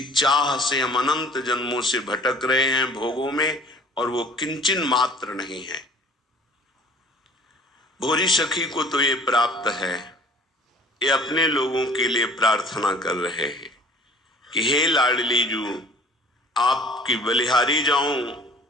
चाह से हम अनंत जन्मों से भटक रहे हैं भोगों में, और वो किंचन मात्र नहीं है। भोरी सखी को तो ये प्राप्त है। ये अपने लोगों के लिए प्रार्थना कर रहे हैं कि हे लाडली जू, आपकी बलिहारी जाऊं,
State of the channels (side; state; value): both; normal; correlation 0.49